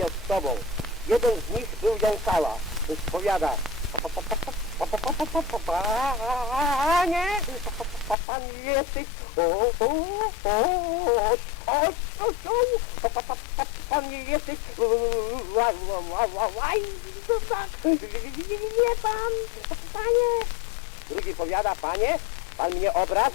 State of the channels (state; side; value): drops out; right; at 8.2 s